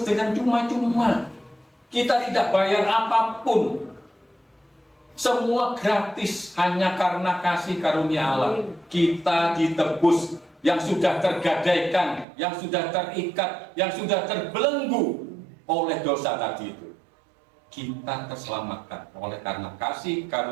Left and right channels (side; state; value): left; drops out; at 12.2 s